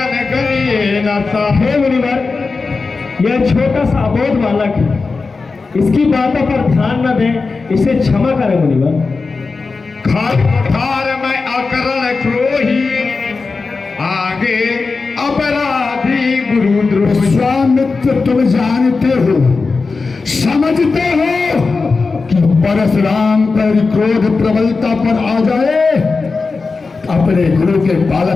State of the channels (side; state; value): right; quieter; 4.2 dB